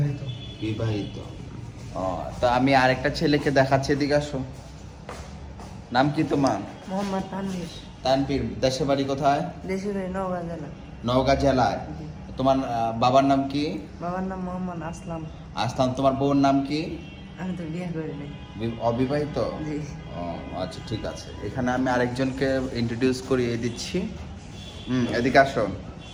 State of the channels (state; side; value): identical; both; correlation 1.00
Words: বিবাহিত। ও, তো আমি আরেকটা ছেলেকে দেখাচ্ছি, এদিকে আসো। নাম কি তোমার? মোহাম্মদ তানভীর। তানভীর, দেশের বাড়ি কোথায়? দেশের বাড়ি নওগাঁ জেলা। নওগাঁ জেলায়। তোমার বাবার নাম কি? বাবার নাম মোহাম্মদ আসলাম। আসলাম। তোমার বউর নাম কি? আমি তো বিয়ে করি নাই। অবিবাহিত? জি। ও আচ্ছা, ঠিক আছে। এখানে আমি আরেকজনকে ইন্ট্রোডিউস করিয়ে দিচ্ছি। এদিকে আসো।